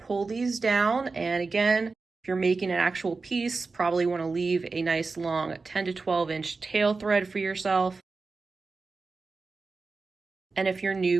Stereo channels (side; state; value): left; quieter; 4.1 dB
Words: these down. And again, if you're making an actual piece, probably want to leave a nice long 10 to 12 inch tail thread for yourself. And if you're new,